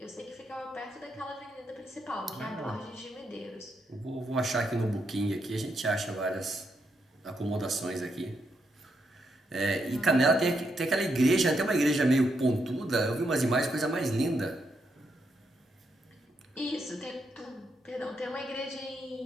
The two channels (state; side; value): normal; both; correlation 0.80